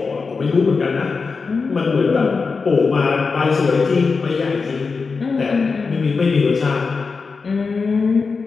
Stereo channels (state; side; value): quieter; right; 4.7 dB